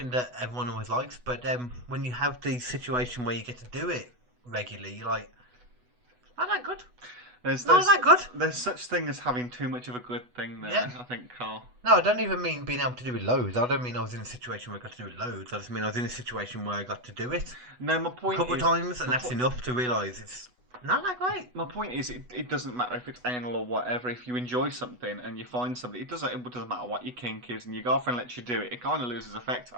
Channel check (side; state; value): left; late; 8.1 ms